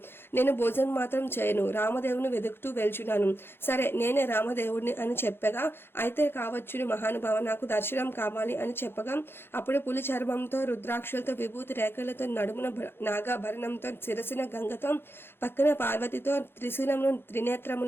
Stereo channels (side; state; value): right; late; 0.11 ms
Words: నేను భోజనం మాత్రం చేయను, రామదేవుని వెతుకుతూ వెళ్చున్నాను. సరే, నేనే రామదేవుడిని అని చెప్పగా, అయితే కావచ్చును మహానుభావ, నాకు దర్శనం కావాలి అని చెప్పగా, అప్పుడు పులి చర్మంతో రుద్రాక్షలతో విభూతి రేఖలతో నడుమున నాగాభరణంతో శిరసున గంగతో పక్కన పార్వతితో త్రిశూలంలో